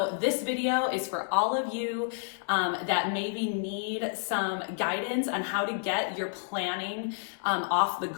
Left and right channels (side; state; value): right; silent; digital silence